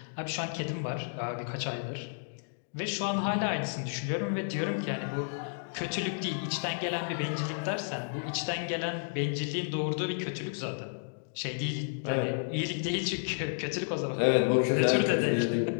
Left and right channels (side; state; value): right; silent; digital silence